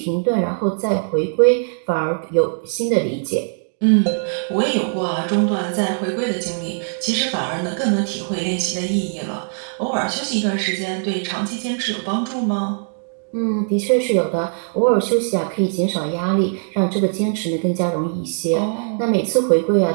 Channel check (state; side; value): silent; left; digital silence